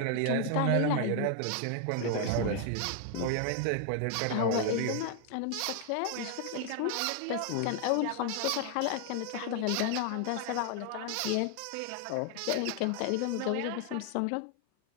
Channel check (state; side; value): different; both; correlation 0.00